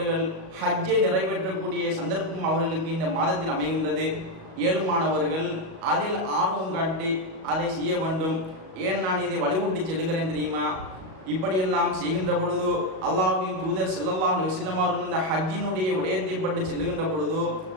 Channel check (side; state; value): left; late; 37 ms